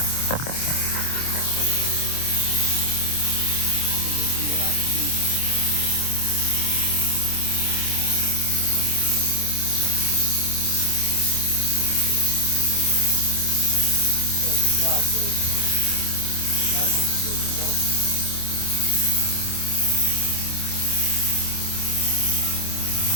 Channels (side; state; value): right; late; 27 ms